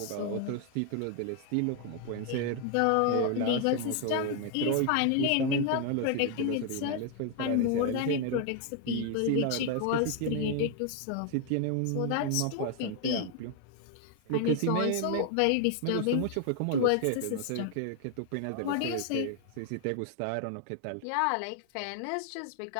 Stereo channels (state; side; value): different; both; correlation 0.01